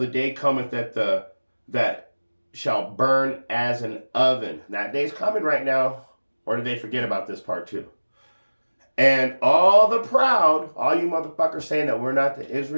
day cometh that shall burn as an oven. That day's coming right now. Or did they forget about this part too? And all the proud, all you motherfuckers saying that we're not the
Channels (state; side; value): inverted; both; correlation -1.00